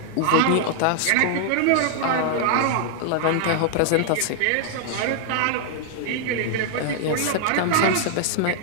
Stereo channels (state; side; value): different; both; correlation 0.00